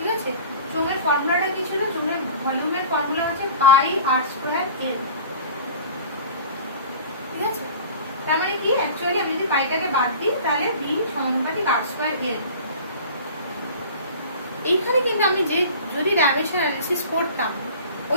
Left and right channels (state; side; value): inverted; both; correlation -0.40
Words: আছে? চোঙের ফর্মুলাটা কি ছিল? চোঙের ভলিউমের ফর্মুলা হচ্ছে পাই আর স্কোয়ার এল, ঠিক আছে? তার মানে কি, অ্যাকচুয়ালি আমি যদি পাইটাকে বাদ দিই তাহলে ভি সমানুপাতিক আর স্কোয়ার এল। এইখানে কিন্তু আমি যদি ডাইমেনশন অ্যানালিসিস করতাম